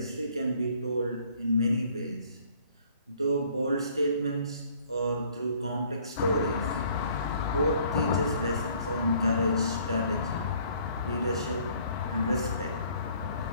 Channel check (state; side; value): inverted; both; correlation -0.59